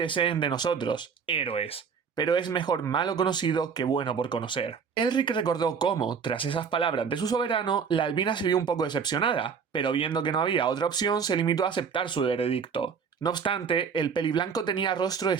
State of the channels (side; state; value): left; quieter; 6.3 dB